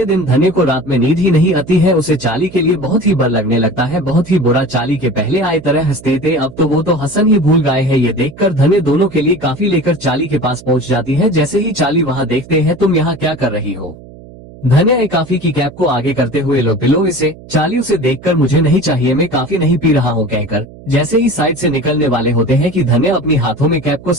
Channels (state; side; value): noise; right; hum, 19 dB below the sound